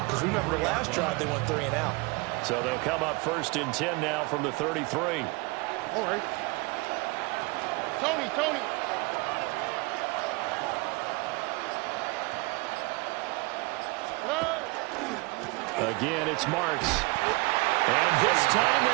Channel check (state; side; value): quieter; left; 25.9 dB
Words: Because remember the last drive, they went 3 and out. So they'll come up 1st and 10 now from the 33. All right. Tony. Again, it's Marks. And this time